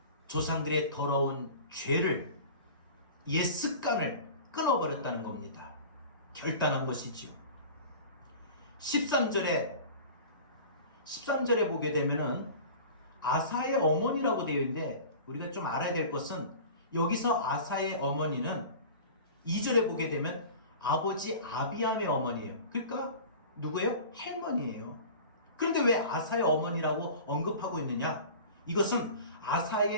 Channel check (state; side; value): inverted; both; correlation -0.39